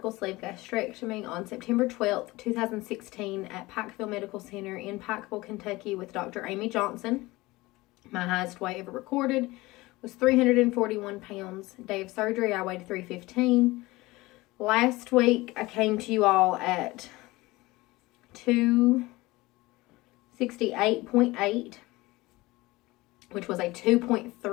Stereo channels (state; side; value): quieter; right; 20.6 dB